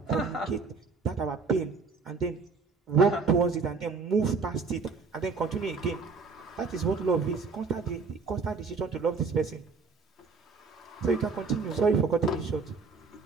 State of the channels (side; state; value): left; quieter; 4.6 dB